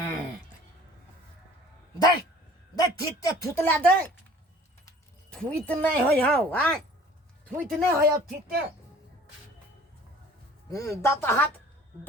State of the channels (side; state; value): both; normal; correlation 0.50